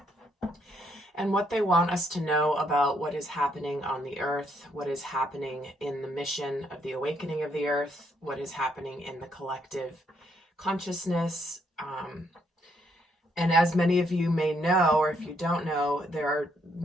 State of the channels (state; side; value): normal; both; correlation 0.73